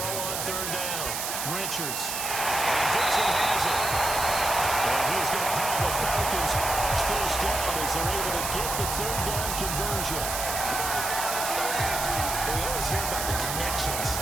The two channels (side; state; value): right; noise; hiss, 3 dB below the sound